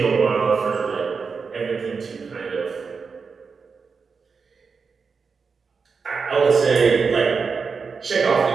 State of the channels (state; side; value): quieter; left; 5.2 dB